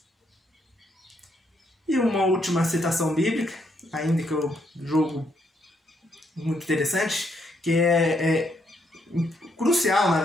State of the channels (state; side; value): normal; both; correlation 0.75